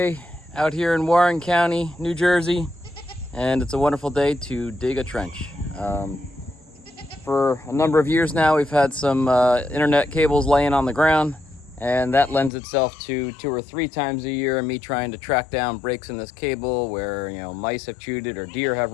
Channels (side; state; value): right; drops out; at 12.5 s